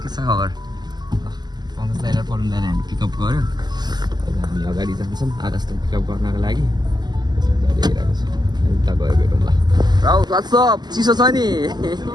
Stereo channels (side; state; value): left; late; 0.20 ms